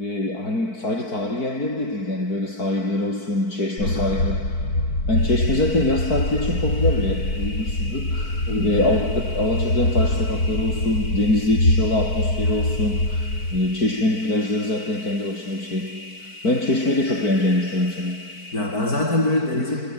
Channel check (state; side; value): late; right; 4.5 ms